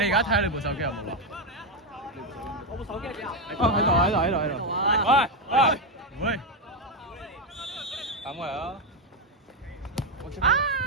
家睇下你部手機有冇啊？我部手機喺邊啊？喺度。喂，唔會。等我嚟啊！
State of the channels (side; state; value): both; normal; correlation 0.06